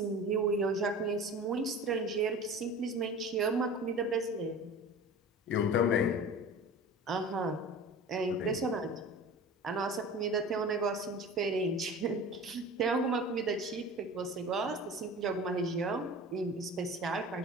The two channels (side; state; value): both; normal; correlation 0.37